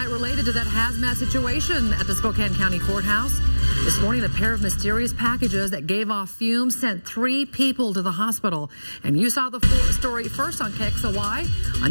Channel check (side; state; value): both; inverted; correlation -1.00